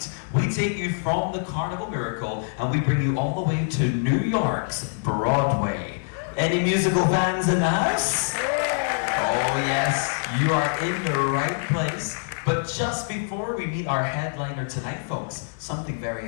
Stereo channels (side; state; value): right; silent; 61 dB below the other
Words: we take you from the Carnival Miracle and we bring you all the way to New York's Broadway. Any musical fans in the house? Oh yes, you are in the right place. But just before we meet our headliner tonight, folks, something